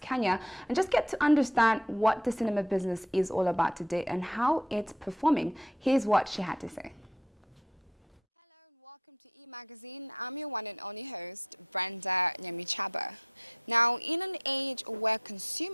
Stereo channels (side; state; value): both; normal; correlation 0.53